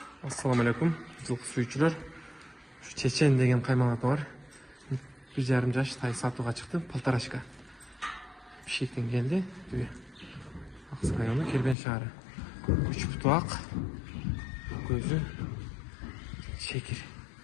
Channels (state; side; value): drops out; right; at 11.8 s